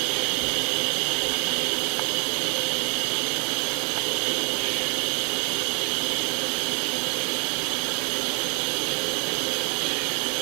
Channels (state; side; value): quieter; left; 37.5 dB